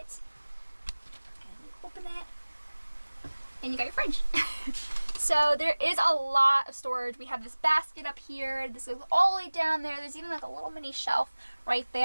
and you open it and you got your fridge. So there is a lot of storage. We have this basket up here. This goes all the way down there. There's even like a little mini shelf right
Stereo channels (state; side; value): inverted; both; correlation -1.00